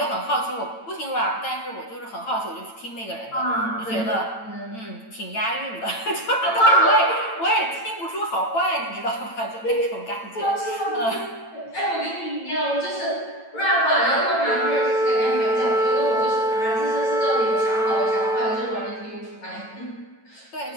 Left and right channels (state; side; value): late; right; 8.9 ms